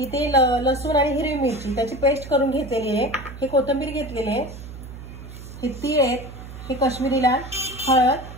लसूण आणि हिरवी मिरची त्याची पेस्ट करून घेतलेली आहे, हे कोथिंबीर घेतलेली आहे, हे तीळ आहेत, हे काश्मीरी लाल,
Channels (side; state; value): right; noise; hum, 13 dB below the sound